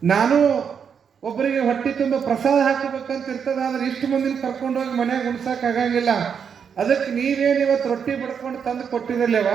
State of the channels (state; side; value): quieter; left; 7.1 dB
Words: ನಾನು ಒಬ್ಬರಿಗೆ ಹೊಟ್ಟೆ ತುಂಬ ಪ್ರಸಾದ ಹಾಕಬೇಕಂತ ಇರ್ತದೆ. ಆದರೆ ಇಷ್ಟು ಮಂದಿನ ಕರ್ಕೊಂಡೋಗಿ ಮನೆಯಾಗ ಉಣ್ಸೋಕ್ಕಾಗಂಗಿಲ್ಲ. ಅದಕ್ಕೆ ನೀವೇನು ಇವತ್ತು ರೊಟ್ಟಿ ಬಡ್ಕೊಂಡು ತಂದು ಕೊಟ್ಟಿರಲಿವ,